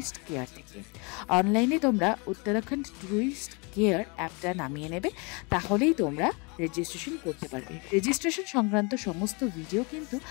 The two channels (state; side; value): quieter; right; 30.7 dB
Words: কেয়ার থেকে। অনলাইনে তোমরা উত্তরাখণ্ড ট্যুরিস্ট কেয়ার অ্যাপটা নামিয়ে নেবে, তাহলেই তোমরা রেজিস্ট্রেশন করতে পারবে। রেজিস্ট্রেশন সংক্রান্ত সমস্ত ভিডিও কিন্তু